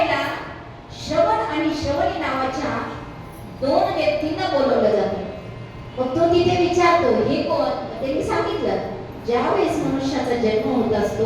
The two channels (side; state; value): both; identical; correlation 1.00